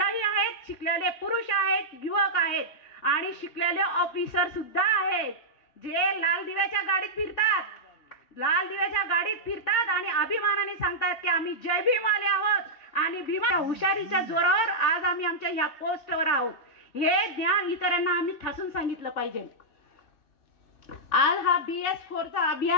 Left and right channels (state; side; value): late; right; 3.5 ms